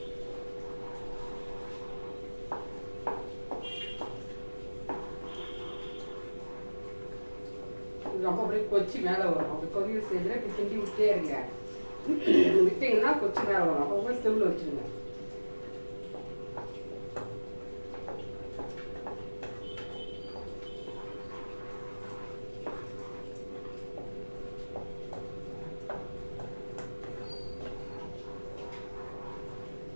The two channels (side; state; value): both; inverted; correlation -1.00